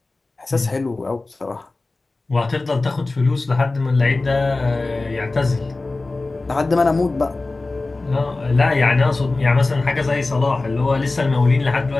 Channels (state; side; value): quieter; right; 3.3 dB